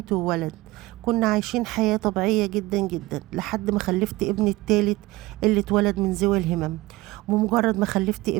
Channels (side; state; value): left; quieter; 19.7 dB